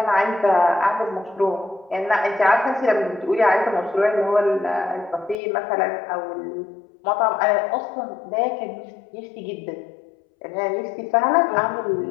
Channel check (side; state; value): right; drops out; at 5.4 s